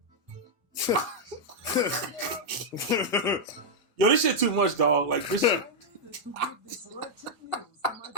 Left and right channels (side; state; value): both; normal; correlation -0.03